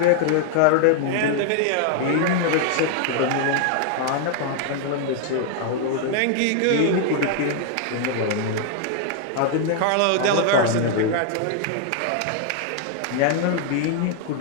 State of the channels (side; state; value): both; different; correlation 0.00